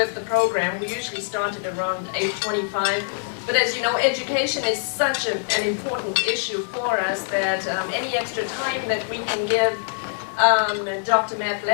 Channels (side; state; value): right; silent; digital silence